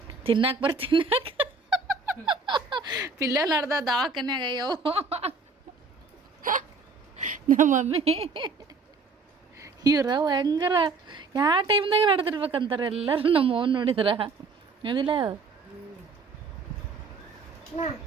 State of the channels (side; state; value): left; quieter; 4.3 dB